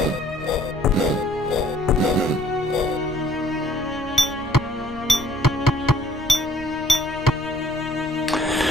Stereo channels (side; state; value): left; noise; rumble, 19 dB below the sound